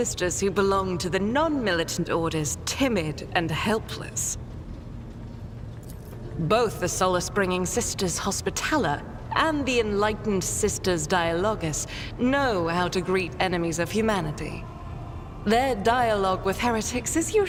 who belong to the non-militant orders timid and helpless. Both the solace-bringing Sisters Hospitaller and the enlightened Sisters Dialogus know how to greet enemies of humanity. Their dialogue with heretics is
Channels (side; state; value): both; identical; correlation 1.00